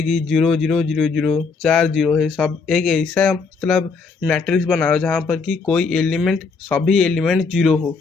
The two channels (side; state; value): right; quieter; 4.7 dB